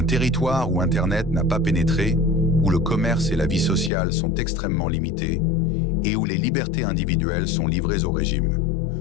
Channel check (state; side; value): drops out; right; at 3.9 s